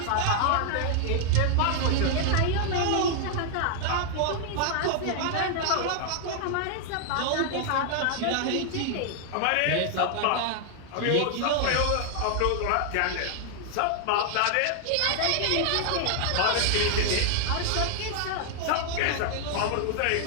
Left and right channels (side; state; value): both; different; correlation 0.00